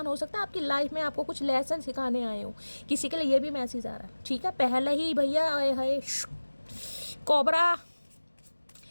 हो सकता है आपकी लाइफ में आपको कुछ लेसन सिखाने आए हो। किसी के लिए ये भी मैसेज आ रहा है, ठीक है। पहले ही भैया आए है कोबरा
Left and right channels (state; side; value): inverted; both; correlation -1.00